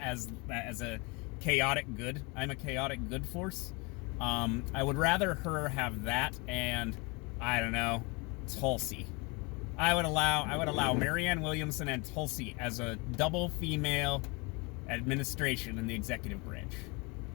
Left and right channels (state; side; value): quieter; right; 28.5 dB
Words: a chaotic good. I'm a chaotic good force. I would rather her have that and, I don't know, Tulsi. I would allow Marianne Williamson and Tulsi as a double female administration in the executive branch.